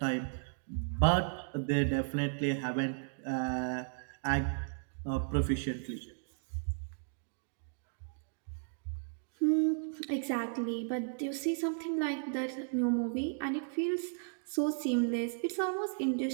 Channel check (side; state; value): left; silent; digital silence